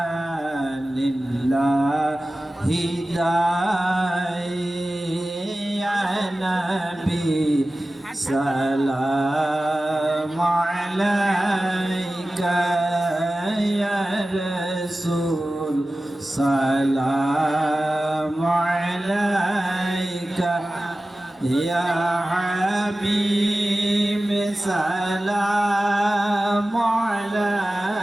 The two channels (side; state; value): both; normal; correlation 0.95